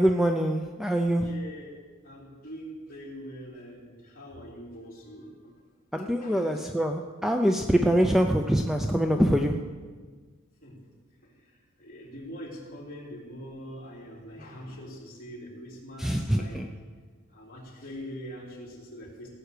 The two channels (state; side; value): normal; both; correlation 0.89